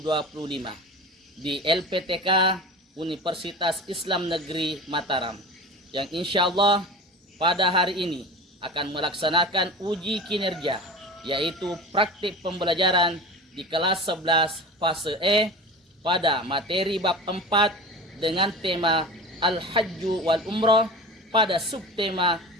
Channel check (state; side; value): normal; both; correlation 0.32